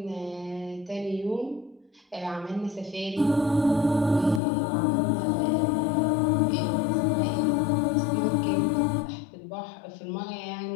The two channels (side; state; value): right; drops out; at 4.4 s